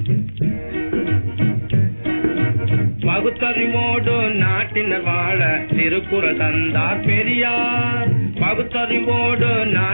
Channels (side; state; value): both; inverted; correlation -1.00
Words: பகுத்தறிவோடு நாட்டினர் வாழ திருக்குறள் தந்தார் பெரியார். பகுத்தறிவோடு